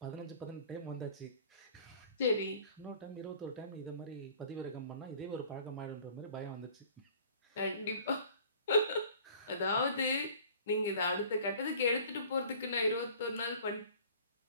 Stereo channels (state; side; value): inverted; both; correlation -0.49